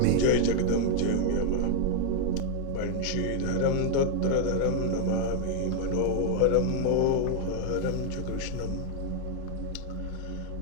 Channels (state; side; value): different; both; correlation 0.00